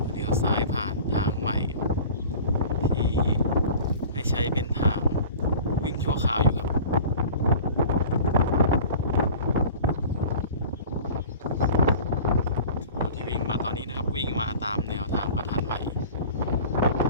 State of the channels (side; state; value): both; inverted; correlation -0.41